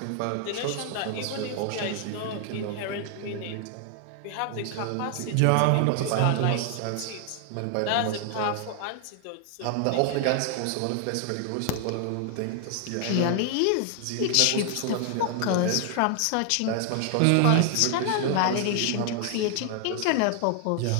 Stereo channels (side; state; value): both; different; correlation 0.00